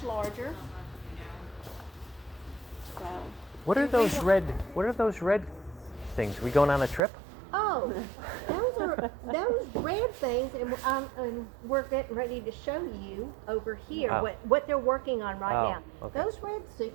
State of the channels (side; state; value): left; drops out; at 7.0 s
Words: larger. So. What are those red? What are those red things? We going on a trip? Oh, those are those red things, and we're getting ready to show you over here Oh. what they're working on right Oh, now. okay. Those red